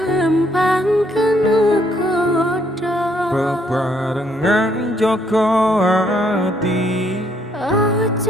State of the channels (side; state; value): both; normal; correlation 0.70